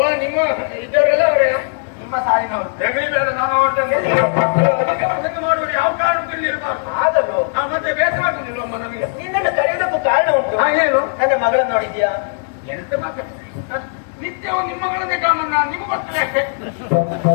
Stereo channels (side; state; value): right; silent; digital silence